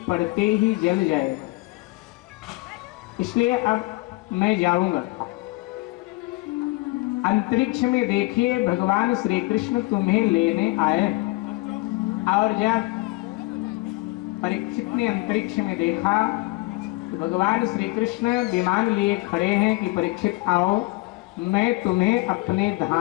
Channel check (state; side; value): quieter; right; 22.6 dB